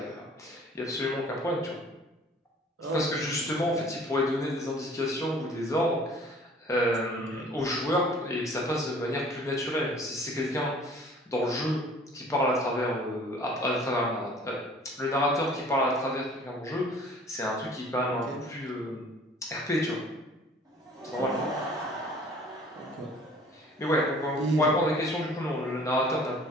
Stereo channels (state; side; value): normal; both; correlation 0.51